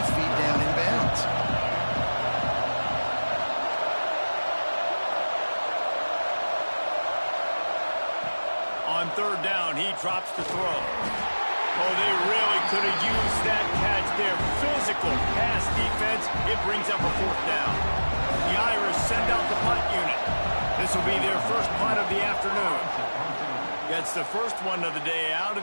feet down in bounds. On third down, he drops the throw. Oh, they really could have used that catch there. Physical pass defense. It brings up a fourth down. The Irish send out the punt unit. This will be their first punt of the afternoon. Gets the first one of the day out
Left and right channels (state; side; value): inverted; both; correlation -1.00